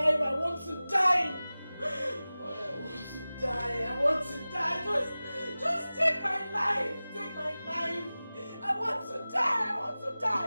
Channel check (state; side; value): inverted; both; correlation -0.97